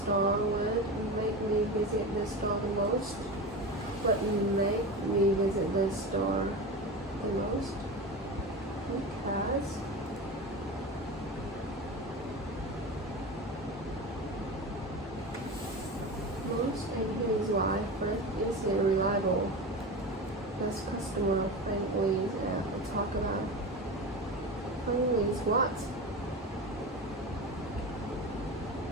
would make me visit the store the most? What make me visit the store the most? Because most, and here is why. First, is it reliable? Does customer friendly talk about friendly is what?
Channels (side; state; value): both; normal; correlation 0.26